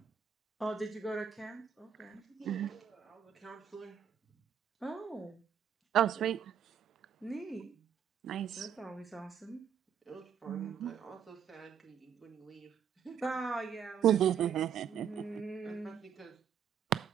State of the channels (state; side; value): quieter; left; 8.0 dB